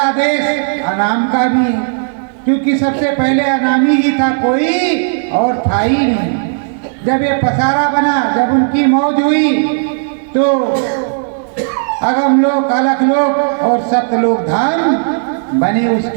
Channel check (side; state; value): left; silent; digital silence